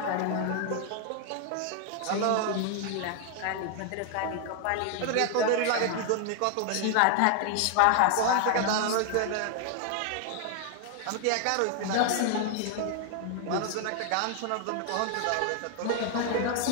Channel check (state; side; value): different; both; correlation 0.00